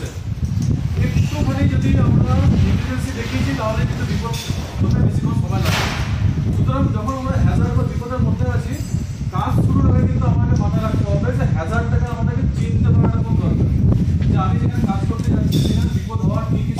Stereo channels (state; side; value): identical; both; correlation 1.00